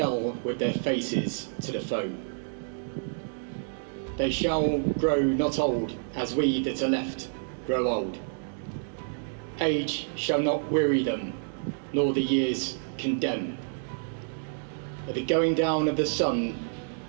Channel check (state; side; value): silent; left; digital silence